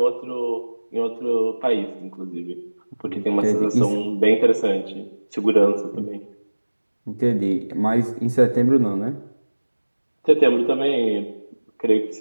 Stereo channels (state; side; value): inverted; both; correlation -1.00